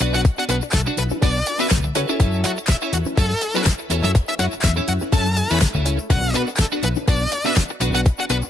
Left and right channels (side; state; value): both; normal; correlation 0.82